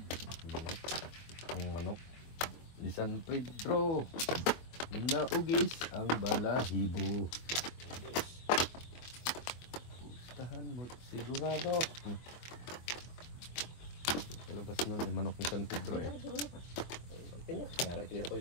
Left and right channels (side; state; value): right; late; 24 ms